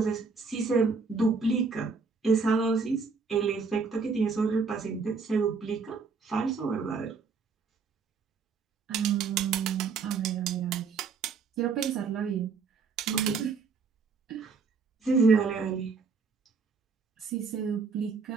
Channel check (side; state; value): left; quieter; 4.9 dB